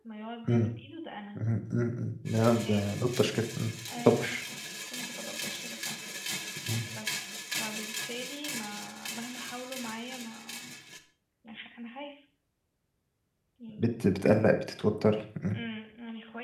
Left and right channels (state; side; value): identical; both; correlation 1.00